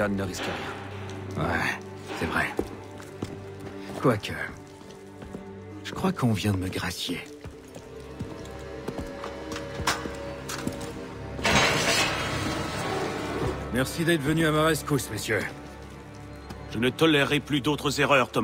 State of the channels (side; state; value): both; identical; correlation 1.00